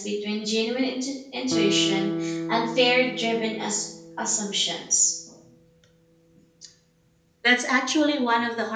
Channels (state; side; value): identical; both; correlation 1.00